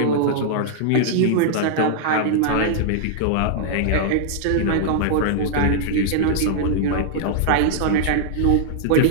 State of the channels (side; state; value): both; different; correlation -0.01